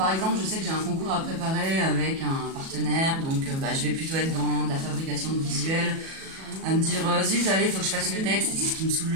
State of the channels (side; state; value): left; late; 37 ms